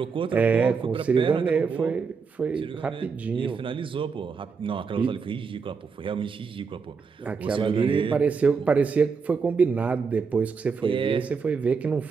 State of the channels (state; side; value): quieter; left; 5.3 dB